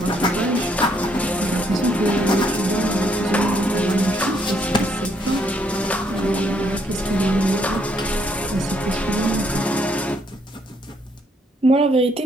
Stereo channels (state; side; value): normal; both; correlation 0.71